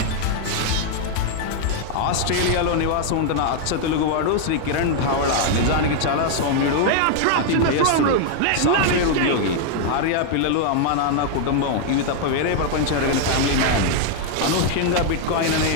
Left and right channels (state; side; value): different; both; correlation 0.00